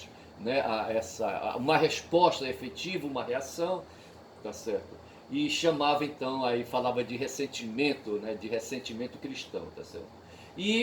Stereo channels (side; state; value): both; identical; correlation 1.00